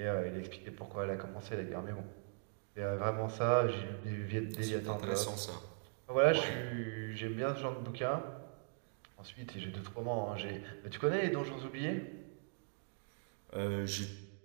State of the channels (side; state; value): left; silent; digital silence